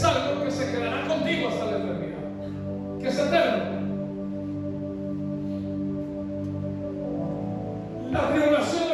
algo que se quedará contigo hasta la eternidad, que es eterno. La tribulación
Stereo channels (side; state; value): both; identical; correlation 1.00